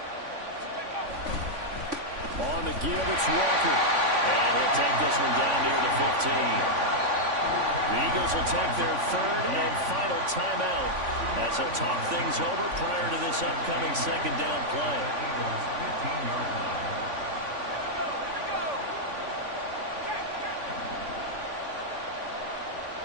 On the give, it's Walker. And he'll take this one down near the 15. The Eagles will take their 3rd and final timeout as they'll talk things over prior to this upcoming 2nd down play. Eagles 15-yard line.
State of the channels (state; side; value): late; left; 3.5 ms